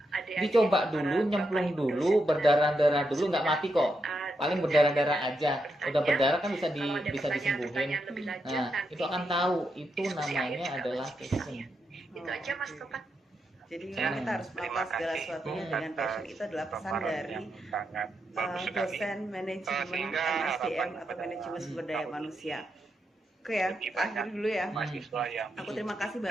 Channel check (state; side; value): normal; both; correlation 0.84